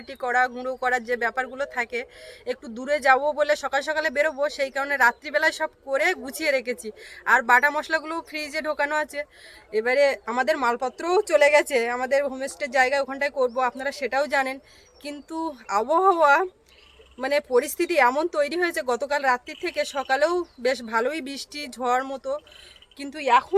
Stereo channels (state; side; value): identical; both; correlation 1.00